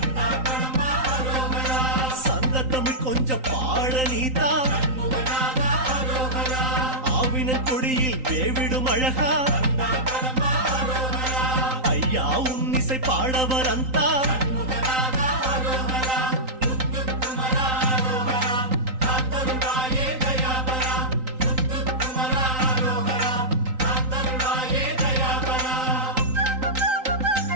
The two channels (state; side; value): late; left; 3.9 ms